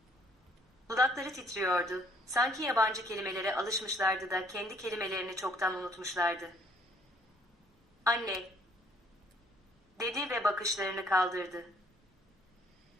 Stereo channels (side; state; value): both; normal; correlation 0.63